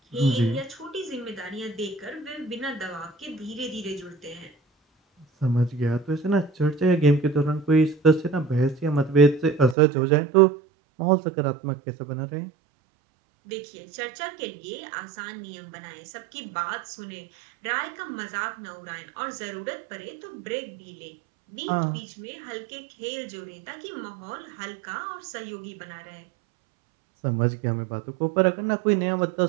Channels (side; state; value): left; drops out; at 9.8 s